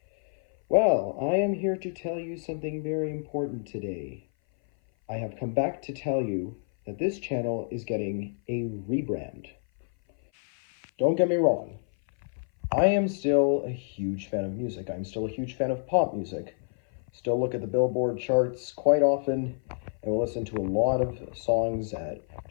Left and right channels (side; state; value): right; silent; 57 dB below the other